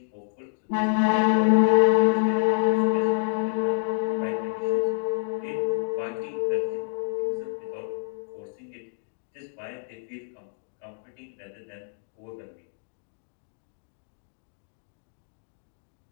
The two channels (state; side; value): silent; right; digital silence